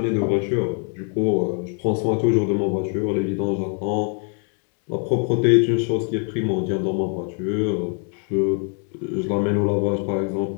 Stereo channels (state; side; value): quieter; right; 38.7 dB